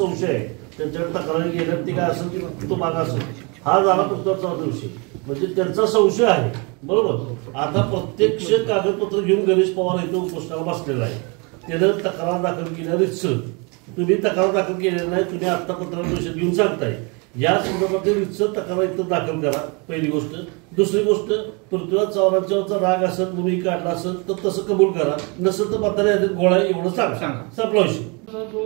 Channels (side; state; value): left; quieter; 31.2 dB